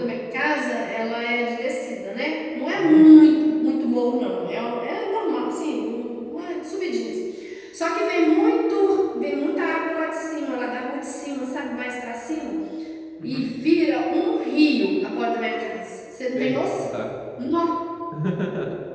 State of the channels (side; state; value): both; identical; correlation 1.00